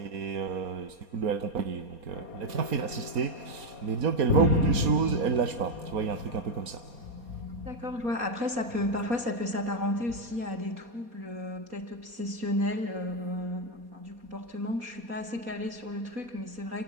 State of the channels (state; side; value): late; left; 4.2 ms